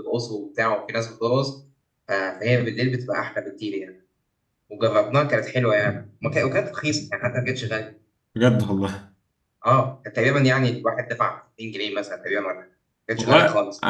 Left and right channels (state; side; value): identical; both; correlation 1.00